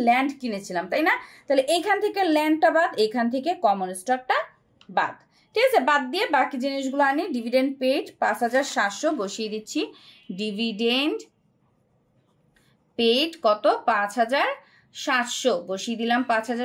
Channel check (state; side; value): identical; both; correlation 1.00